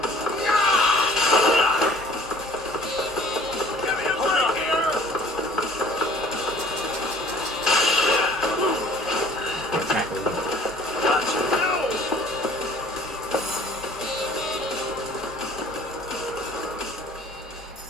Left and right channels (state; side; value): normal; both; correlation 0.52